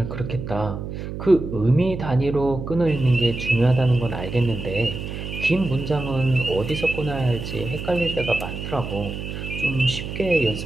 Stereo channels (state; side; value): noise; right; hum, 7 dB below the sound